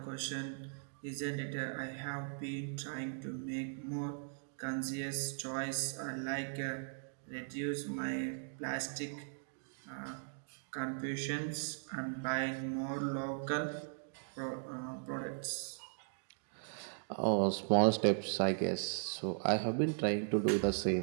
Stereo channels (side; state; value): left; silent; digital silence